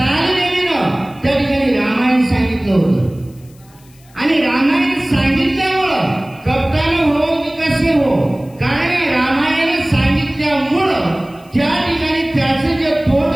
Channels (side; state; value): left; noise; hiss, 29 dB below the sound